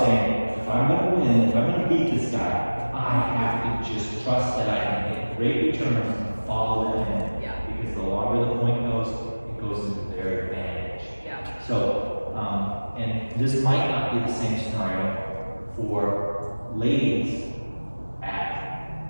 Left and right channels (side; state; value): both; inverted; correlation -1.00